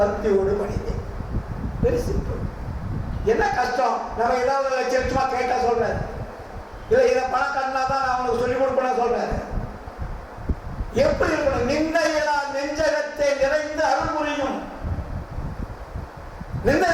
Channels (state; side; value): identical; both; correlation 1.00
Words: மணியே. Very simple. என்ன கஷ்டம்? நம்ம ஏதாவது லட்சமா கேட்டா சொல்றாரு, இல்ல இதை பணம் கண்ணா தான் நான் அவனுக்கு சொல்லிக் கொடுப்பேன் சொல்றாரு. எப்படி இருக்கணும்? நிந்தையெல்லாம் நெஞ்சகத்தை நிறைந்து அருள் புரியும். நிந்தை